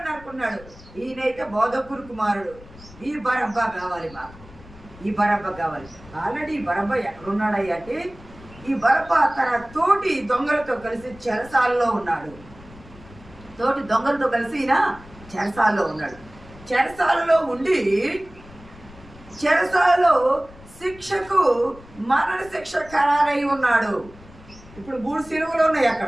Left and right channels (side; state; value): left; noise; rumble, 21 dB below the sound